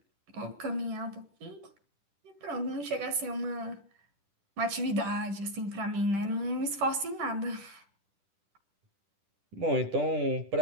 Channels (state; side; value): late; left; 10 ms